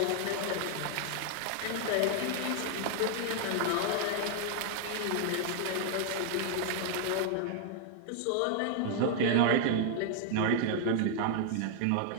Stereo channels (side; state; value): both; different; correlation -0.01